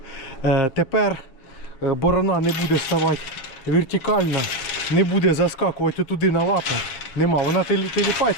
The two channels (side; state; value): right; late; 7.5 ms